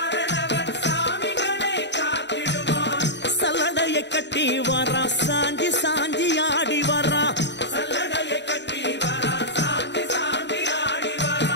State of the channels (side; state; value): right; late; 0.51 ms